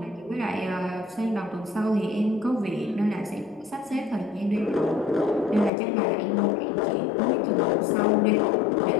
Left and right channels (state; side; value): drops out; right; at 5.7 s